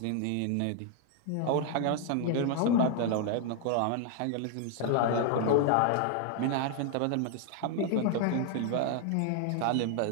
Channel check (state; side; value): different; both; correlation 0.00